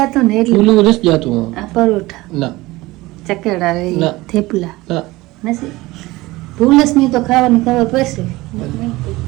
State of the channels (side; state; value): left; quieter; 19.9 dB